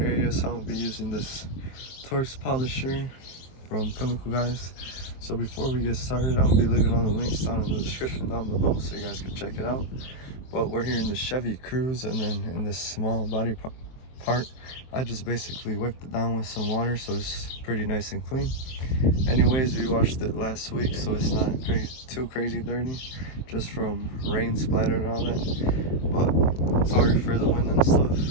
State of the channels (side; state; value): right; late; 23 ms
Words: So I'm going to be using this Torx polisher from Chemical, guys. So before we get started, I'm going to be leaving all the links down in the description down below so you guys can check it out. But we're here in the Chevy Cruze, and then in this small body part, I just basically whipped it down with some water so it's pretty nice and clean. Anyways, we washed it last week, so it's not too crazy dirty, just from rain splatter and all that. But sorry for the wind and stuff,